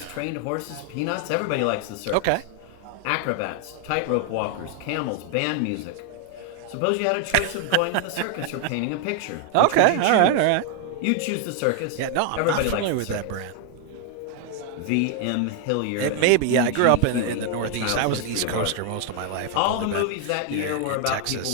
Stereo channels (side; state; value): both; different; correlation 0.00